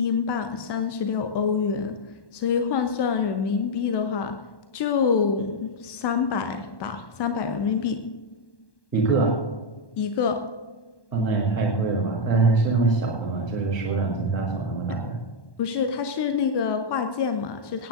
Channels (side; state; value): right; late; 1.1 ms